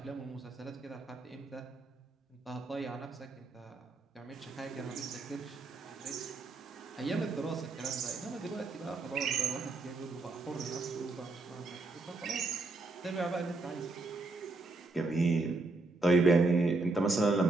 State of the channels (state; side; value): quieter; left; 3.3 dB